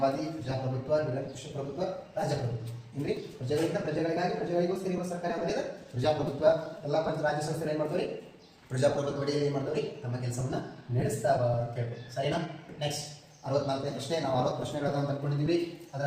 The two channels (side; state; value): both; identical; correlation 1.00